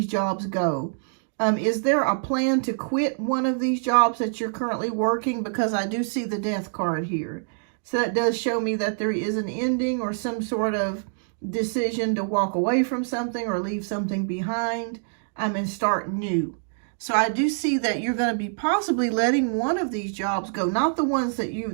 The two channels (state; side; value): silent; left; digital silence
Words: jobs go. Is there a plan to quit one of these jobs that you're currently working? Because I do see the Death card here. So that does show me that there is an ending or some sort of decision to walk away from something or leave something behind and start new. So I do see that you're going to be possibly letting one of these jobs go, not the ones